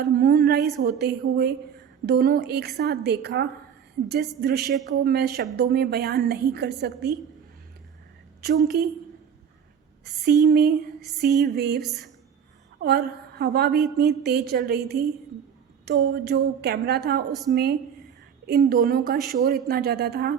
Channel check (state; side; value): quieter; left; 7.8 dB